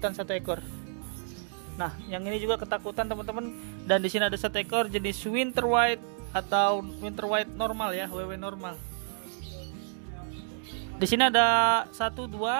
satu ekor. Nah, yang ini juga ketakutan teman-teman. Dan di sini ada satu ekor jenis Winter White atau Winter White normal ya, WW normal. Di sini ada 1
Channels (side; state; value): left; silent; digital silence